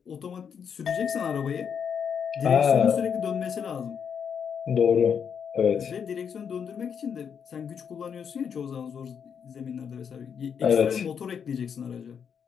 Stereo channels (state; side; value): quieter; right; 7.3 dB